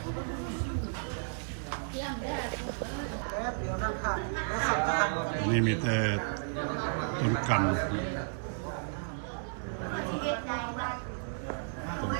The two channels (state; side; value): silent; left; 56 dB below the other